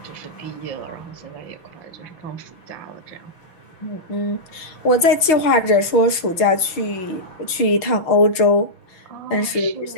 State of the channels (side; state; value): right; late; 6.0 ms